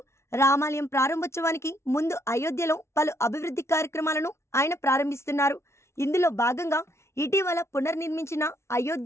రామాలయం ప్రారంభోత్సవానికి ముందు అయోధ్యలో పలు అభివృద్ధి కార్యక్రమాలను ఆయన ప్రారంభిస్తున్నారు. ఇందులో భాగంగా ఇటీవల పునర్నిర్మించిన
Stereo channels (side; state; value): right; late; 0.13 ms